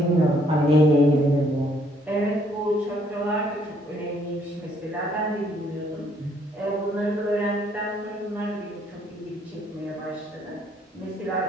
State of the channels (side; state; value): both; normal; correlation 0.67